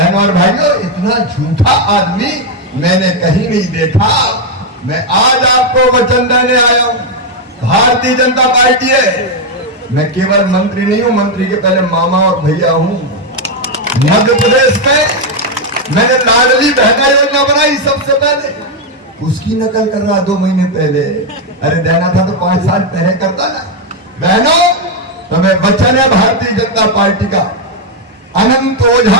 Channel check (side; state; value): both; normal; correlation 0.03